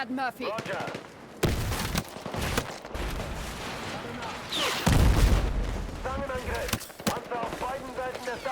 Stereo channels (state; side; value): identical; both; correlation 1.00